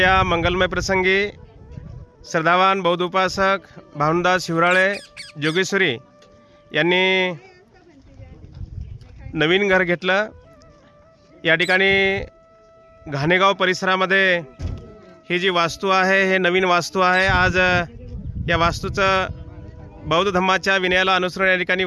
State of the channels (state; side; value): identical; both; correlation 1.00